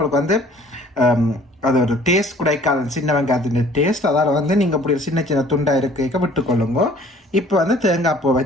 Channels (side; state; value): both; normal; correlation 0.53